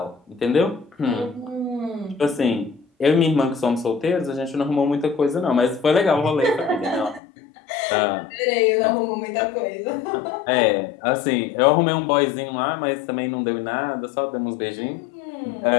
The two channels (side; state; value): right; drops out; at 7.2 s